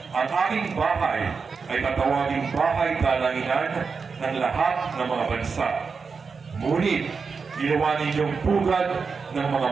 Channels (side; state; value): left; quieter; 5.2 dB